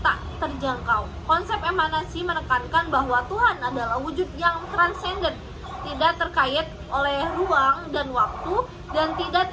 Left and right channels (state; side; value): identical; both; correlation 1.00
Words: tak terjangkau. Konsep emanasi menekankan bahwa Tuhan adalah wujud yang transenden, tidak terkait oleh ruang dan waktu, dan